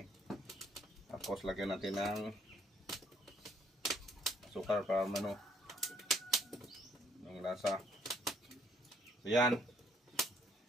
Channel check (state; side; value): normal; both; correlation 0.65